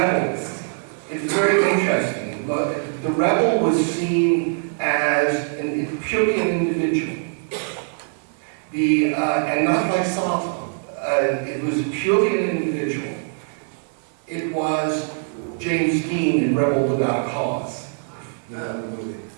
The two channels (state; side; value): silent; left; 64 dB below the other